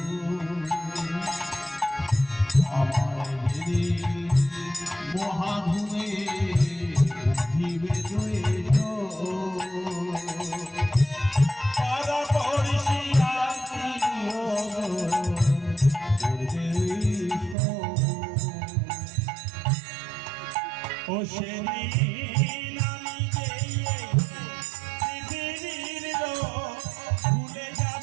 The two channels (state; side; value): drops out; left; at 17.6 s